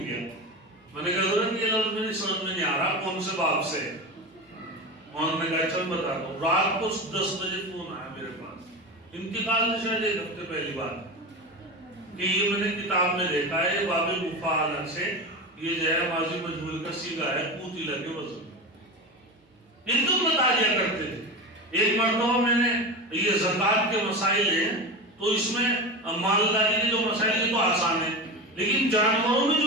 میں نے کہا حضرت یہ لفظ میری سمجھ میں نہیں آ رہا کون سے باب سے ہے۔ مولانا نے کہا چل بتا دو، رات کو 10 بجے فون آیا میرے پاس، انتقال سے شاید ایک ہفتے پہلی بات، کہ یہ میں نے کتاب میں دیکھا ہے باب مفاعلہ سے یہ جو ہے ماضی مجہول کا صیغہ ہے قوتل کے وزن، ان کو بتا دیا کرتے تھے۔ ایک مرتبہ میں نے یہ زکوٰۃ کے مسائل ہیں، تو اس میں مالداری کے جو مسائل ہیں تو آسان ہیں، لیکن جانوروں میں جو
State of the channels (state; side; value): normal; both; correlation 0.24